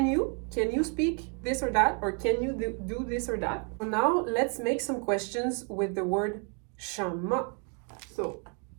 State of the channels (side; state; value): left; quieter; 39.3 dB